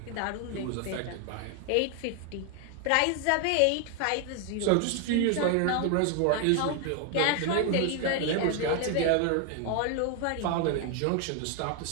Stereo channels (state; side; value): different; both; correlation 0.00